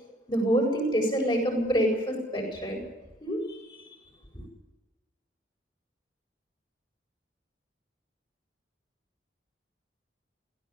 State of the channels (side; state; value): both; normal; correlation 0.59